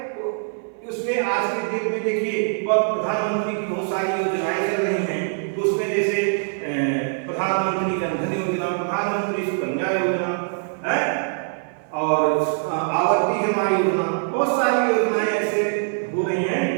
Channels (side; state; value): left; silent; 56 dB below the other